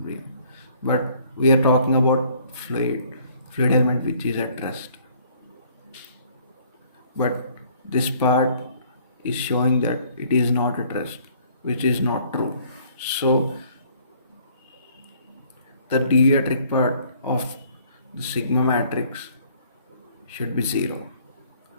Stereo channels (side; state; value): both; inverted; correlation -0.59